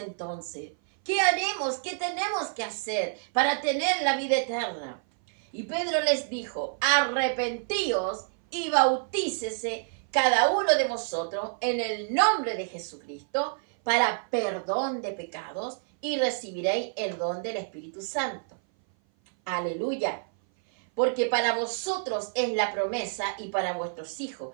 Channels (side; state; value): left; silent; 57 dB below the other